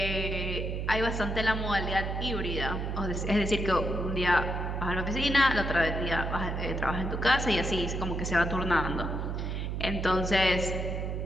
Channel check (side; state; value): right; noise; hum, 2 dB below the sound